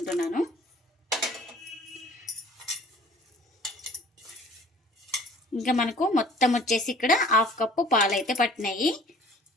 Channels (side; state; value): both; normal; correlation 0.51